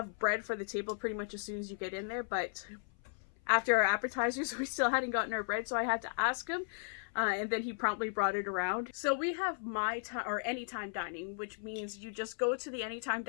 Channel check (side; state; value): right; silent; 54 dB below the other